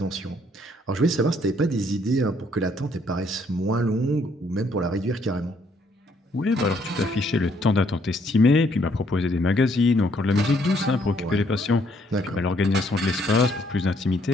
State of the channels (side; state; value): both; normal; correlation 0.68